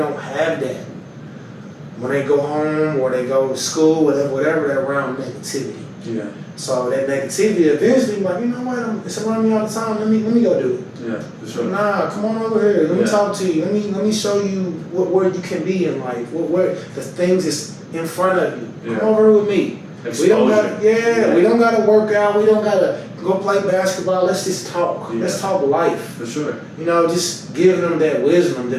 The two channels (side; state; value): both; identical; correlation 1.00